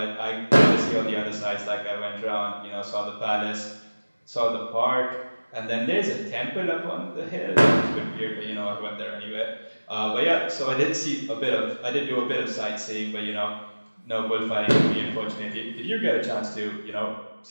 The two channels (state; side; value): inverted; both; correlation -1.00